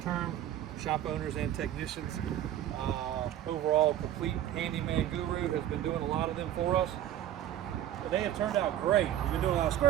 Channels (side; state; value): left; quieter; 11.8 dB